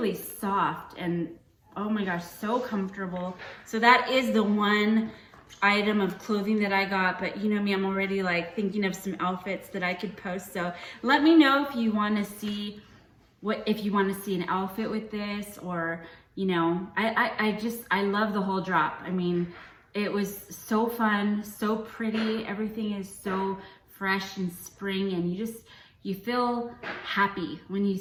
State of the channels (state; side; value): identical; both; correlation 1.00